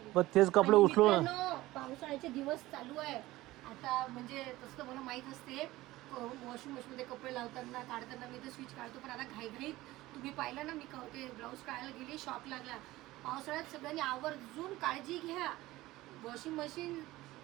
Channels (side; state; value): left; quieter; 17.8 dB